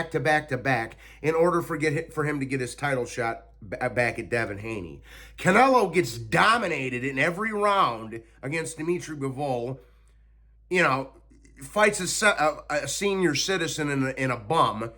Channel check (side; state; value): both; identical; correlation 1.00